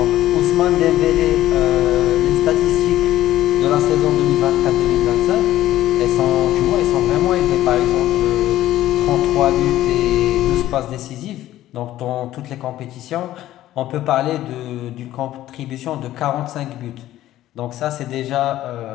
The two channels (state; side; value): quieter; right; 14.1 dB